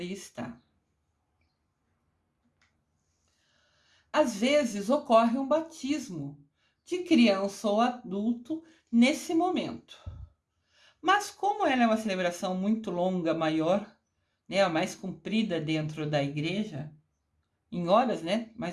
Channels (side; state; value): both; identical; correlation 1.00